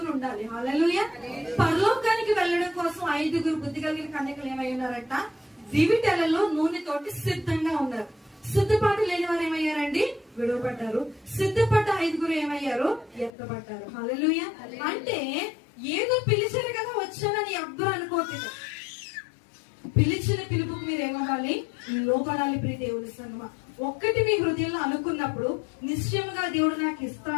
ఉండాలి. హల్లెలూయా. పరలోకానికి వెళ్ళడం కోసం 5 బుద్ధి కలిగిన కన్యకలు ఏమై ఉన్నారంట? దివిటెలలో నూనెతోటి సిద్ధంగా ఉన్నారు. సిద్ధపాటు లేని వారు ఏమయ్యారండి? విడవబడ్డారు. సిద్ధపడ్డ 5 ఏమయ్యారు? ఎత్తబడ్డారు. హల్లెలూయా. అంటే ఏదో పిలిచారు కదా వచ్చానని ఎవ్వరు అనుకోవట్లేదు. పిలిచిన పిలుపుకు మీరు ఏమవ్వాలి? లోపడాలి. ప్రియ దేవుని సంగమా, ఒక్కటి మీ హృదయంలో అనుకున్నప్పుడు నిశ్చయంగా దేవుడు నాకు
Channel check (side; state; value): right; drops out; at 13.3 s